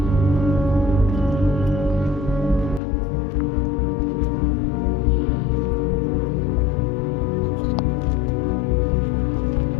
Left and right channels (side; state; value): right; drops out; at 2.8 s